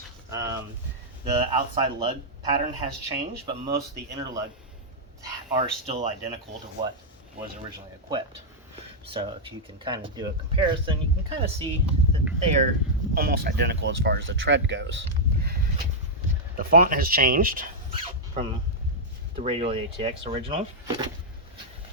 The outside lug pattern has changed, but most of the inner lug are still identical to what was originally equipped. So if you can kind of do a comparison, you can kind of see that they are almost identical as far as the tread goes. The font has changed from the Radial ATX original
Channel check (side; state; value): both; normal; correlation -0.06